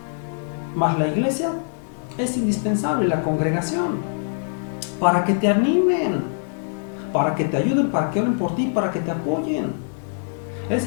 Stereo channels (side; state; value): right; silent; digital silence